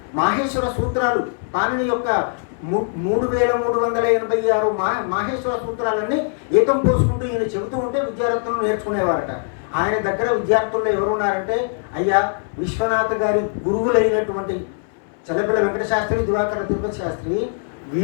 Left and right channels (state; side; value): silent; right; 60 dB below the other